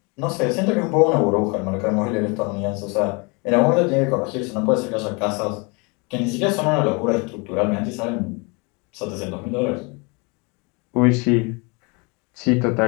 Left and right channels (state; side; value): quieter; right; 30.3 dB